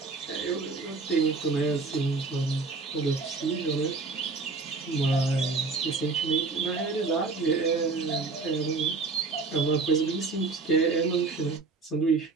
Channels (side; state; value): left; quieter; 4.1 dB